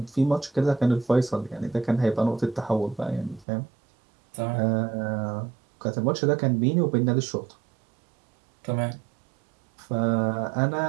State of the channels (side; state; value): left; drops out; at 3.5 s